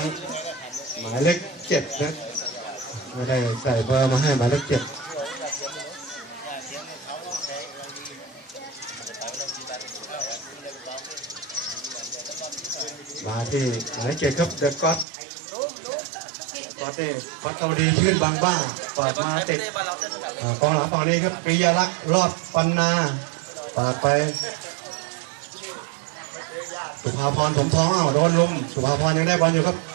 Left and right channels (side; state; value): left; drops out; at 15.1 s